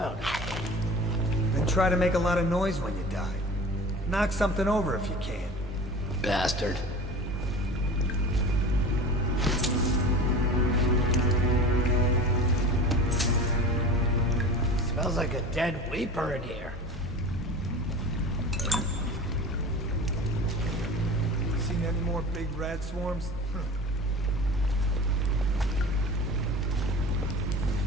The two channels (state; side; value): normal; both; correlation 0.36